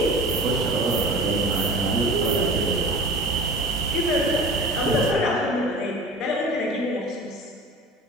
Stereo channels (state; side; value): normal; both; correlation 0.38